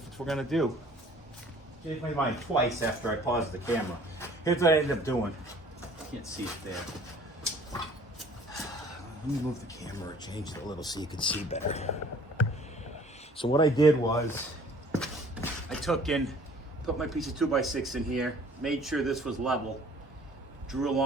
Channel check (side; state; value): both; normal; correlation 0.53